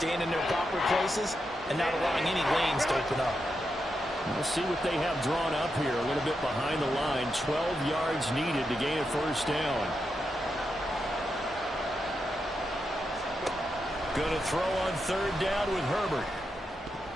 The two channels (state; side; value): normal; both; correlation 0.86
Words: in their proper places and not allowing any lanes to open up. We'll see what they have drawn up here. A little bit behind the line. 12 yards needed to gain a first down. Going to throw on 3rd down with Herbert.